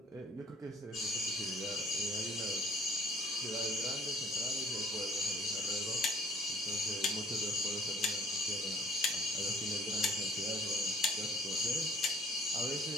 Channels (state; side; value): normal; both; correlation 0.56